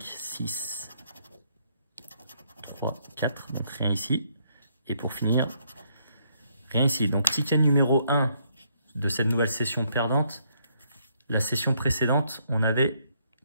6, 3, 4. Donc rien ici. Et pour finir, rien ici. Donc ticket numéro 1 de cette nouvelle session perdante. La session précédente, on avait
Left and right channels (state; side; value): inverted; both; correlation -0.71